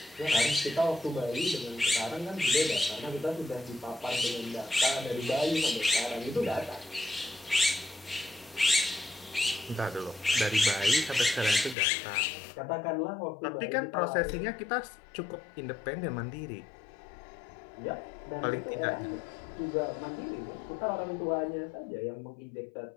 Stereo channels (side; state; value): right; drops out; at 11.8 s